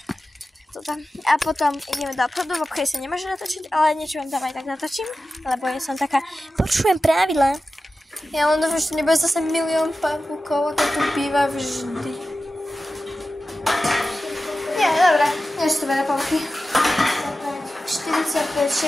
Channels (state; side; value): normal; both; correlation 0.94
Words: to tam. A potom ideme do obchodu. V obchode sa nemôže natočiť, ale niečo vám tam aj tak natočím. Lebo ja som taká, počujem pravidlá. Ja len dúfam, že nebude zase milión pavúkov, ako tu býva vždy. Nie, dobré. Nie sú to veľa pavúky. 45,